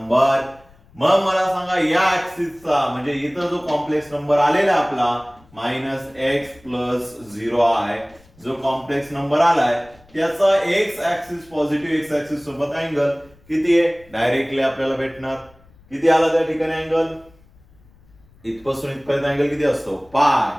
मग मला सांगा या ऍक्सिसचा म्हणजे इथं जो कॉम्प्लेक्स नंबर आलेला आपला -x + 0i जो कॉम्प्लेक्स नंबर आलाय त्याचा x axis positive x axis सोबत अँगल किती आहे? डायरेक्टली आपल्याला भेटणार किती आला त्या ठिकाणी अँगल, इथपासून इथपर्यंत अँगल किती असतो पाय,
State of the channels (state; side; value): noise; left; rumble, 28 dB below the sound